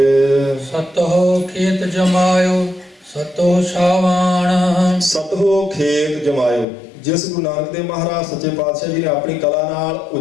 ਸਤੋ ਖੇਤ ਜਮਾਇਓ ਸਤੋ ਸ਼ਾਵਾਨ, ਸਤੋ ਖੇਤ ਜਮਾਇਓ। ਜਿਸ ਗੁਰੂ ਨਾਨਕ ਦੇਵ ਮਹਾਰਾਜ ਸੱਚੇ ਪਾਤਸ਼ਾਹ ਜੀ ਨੇ ਆਪਣੀ ਕਲਾ ਨਾਲ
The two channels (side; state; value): right; drops out; at 6.7 s